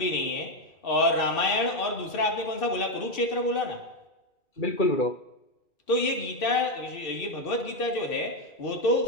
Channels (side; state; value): right; late; 2.6 ms